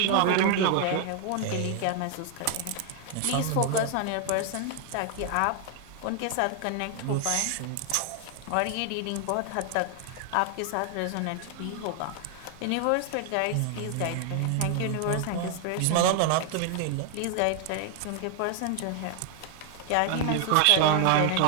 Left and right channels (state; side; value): different; both; correlation 0.00